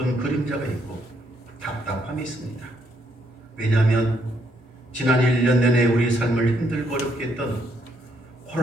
그림자가 있고 답답함이 있습니다. 왜냐하면 지난 1년 내내 우리 삶을 힘들고 어렵게 했던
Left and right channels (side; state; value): both; normal; correlation 0.73